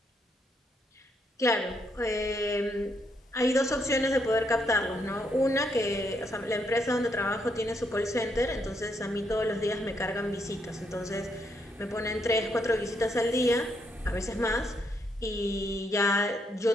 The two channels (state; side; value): normal; both; correlation 0.76